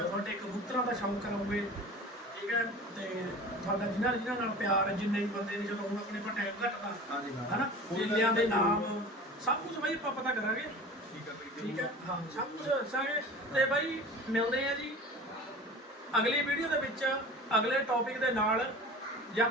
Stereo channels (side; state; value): both; normal; correlation 0.39